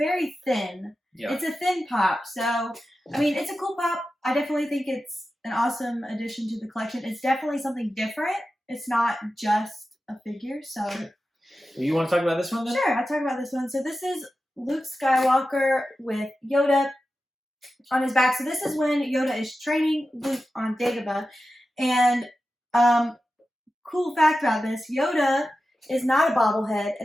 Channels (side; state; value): both; normal; correlation 0.93